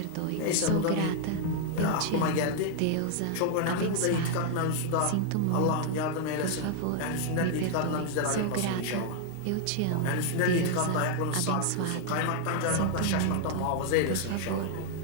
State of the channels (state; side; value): different; both; correlation 0.00